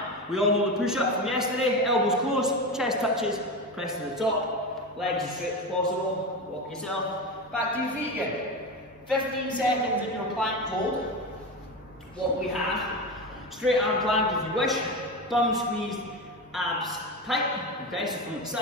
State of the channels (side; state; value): both; normal; correlation 0.21